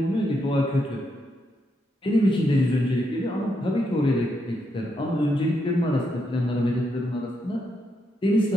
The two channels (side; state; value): both; normal; correlation 0.80